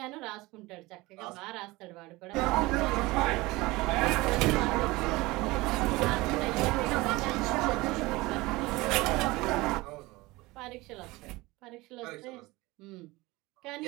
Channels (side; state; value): left; quieter; 21.3 dB